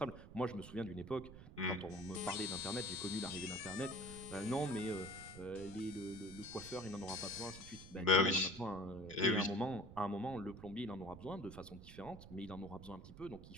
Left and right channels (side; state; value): right; noise; rumble, 15 dB below the sound